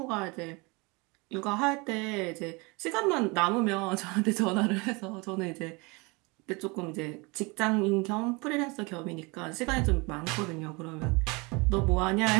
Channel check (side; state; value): left; quieter; 27.3 dB